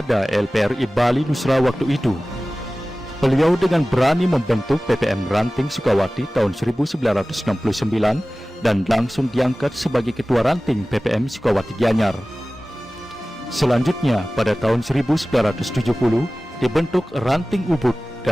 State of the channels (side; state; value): both; normal; correlation 0.97